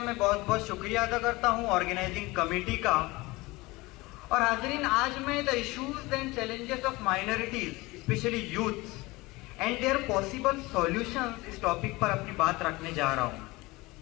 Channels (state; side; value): quieter; right; 22.0 dB